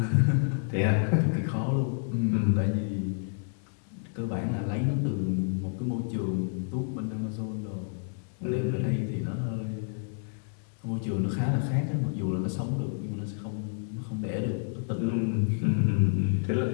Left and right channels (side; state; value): right; silent; digital silence